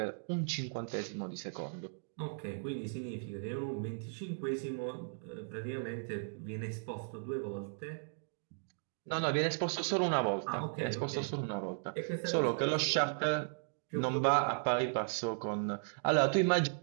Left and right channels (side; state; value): left; silent; digital silence